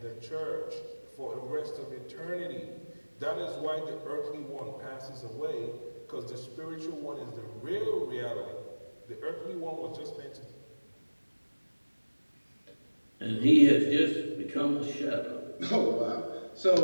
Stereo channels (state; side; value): inverted; both; correlation -1.00